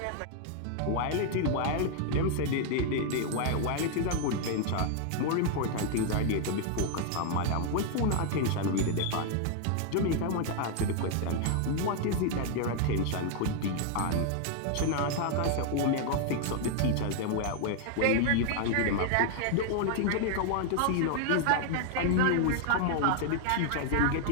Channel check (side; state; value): both; different; correlation 0.00